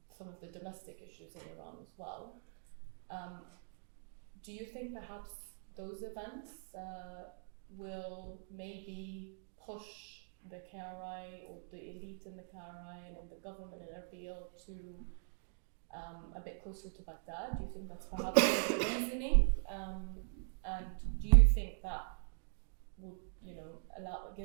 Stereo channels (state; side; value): silent; left; digital silence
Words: some of the domestic issues in Iran as well. Do you think perhaps those events will maybe push the KRI or the elite in the KRI and in the government in Erbil to a bit closer to Baghdad? Do you think that's perhaps one of the reasoning? And do you think that will,